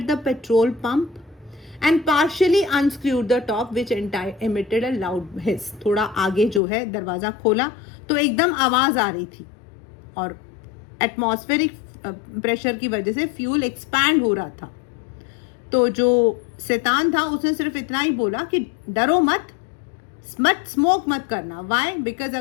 the petrol pump and partially unscrewed the top which emitted a loud hiss. थोड़ा आगे जो है दरवाजा खोला तो एकदम आवाज आ रही थी, और एटमॉस्फेरिक प्रेशर की वजह से फ्यूल एक्सपैंड हो रहा था. तो जो शैतान था उसने सिर्फ इतना ही बोला कि डरो मत, स्मोक मत करना. वाई? बिकॉज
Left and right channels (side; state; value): right; drops out; at 6.6 s